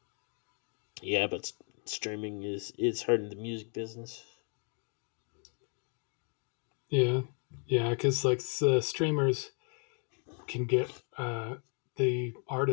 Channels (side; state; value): right; quieter; 39.7 dB